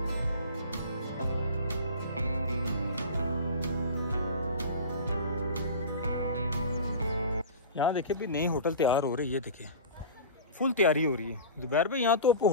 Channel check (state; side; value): inverted; both; correlation -0.34